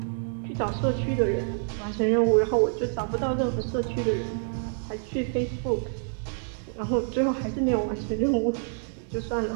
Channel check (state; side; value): silent; left; 58 dB below the other